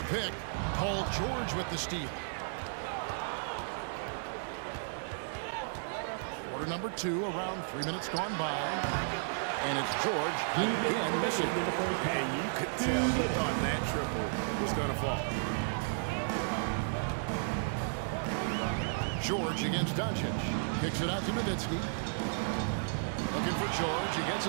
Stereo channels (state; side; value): silent; left; 55 dB below the other